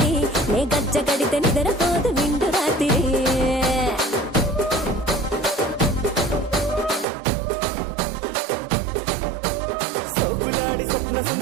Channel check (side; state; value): left; drops out; at 7.1 s